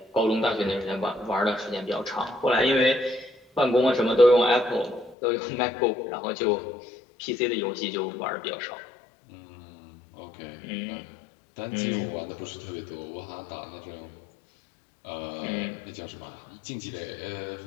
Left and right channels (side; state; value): right; drops out; at 5.2 s